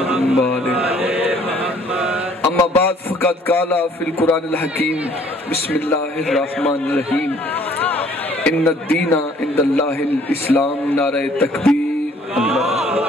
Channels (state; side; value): normal; both; correlation 0.59